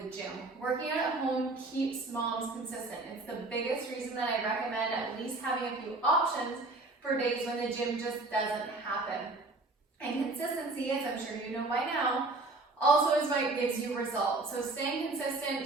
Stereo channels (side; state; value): left; quieter; 3.2 dB